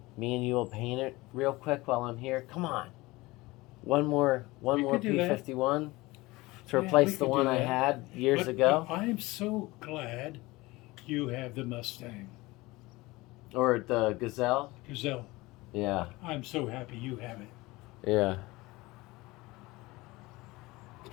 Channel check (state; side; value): quieter; right; 21.2 dB